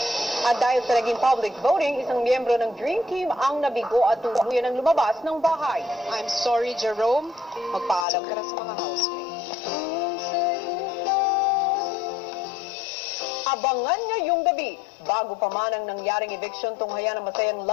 At dahil sa naging public voting, isang miyembro ng Dream Team ang nabigo at tuluyan ng lumabas ng bahay. I'm sorry, Jerome. Magpaalam ka na sa mga housemates. Abangan ngayong gabi, bago pa man ang nangyaring eviction, tunghayan ang masayang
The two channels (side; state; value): right; drops out; at 8.1 s